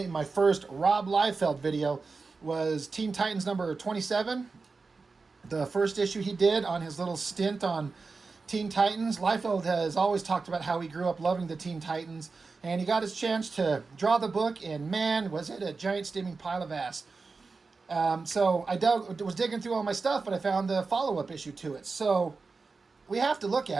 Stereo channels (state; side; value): quieter; left; 4.3 dB